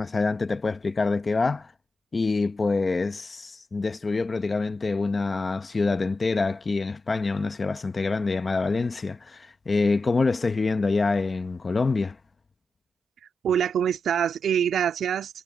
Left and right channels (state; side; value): normal; both; correlation 0.89